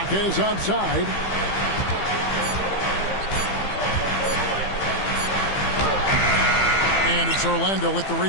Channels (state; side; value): late; right; 15 ms